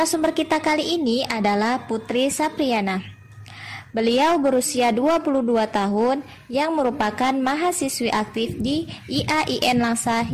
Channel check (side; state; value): both; identical; correlation 1.00